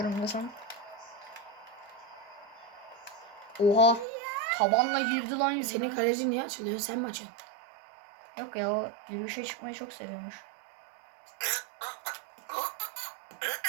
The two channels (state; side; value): drops out; left; at 4.0 s